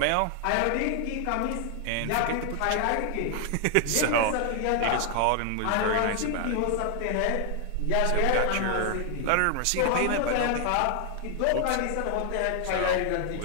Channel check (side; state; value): both; different; correlation 0.00